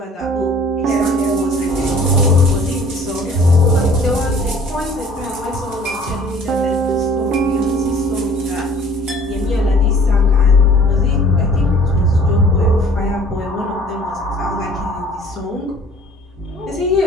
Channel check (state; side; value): normal; both; correlation 0.52